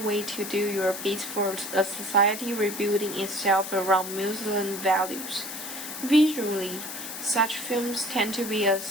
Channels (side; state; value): left; noise; hiss, 8 dB below the sound